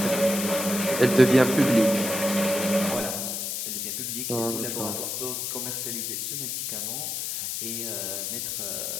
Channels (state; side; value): noise; left; hiss, 3 dB below the sound